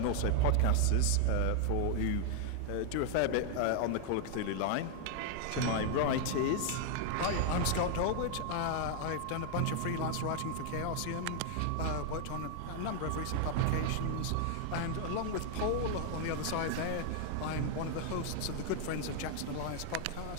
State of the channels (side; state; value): both; different; correlation 0.00